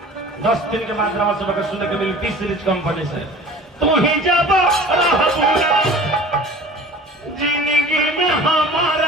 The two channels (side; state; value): both; normal; correlation 0.42